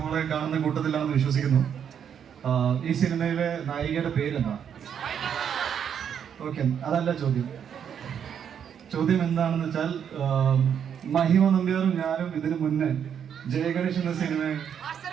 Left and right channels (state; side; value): quieter; left; 8.2 dB